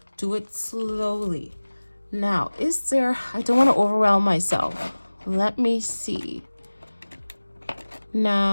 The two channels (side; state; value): both; inverted; correlation -1.00